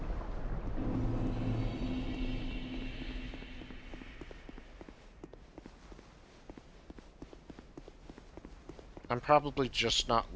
I'm probably just not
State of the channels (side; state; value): both; identical; correlation 1.00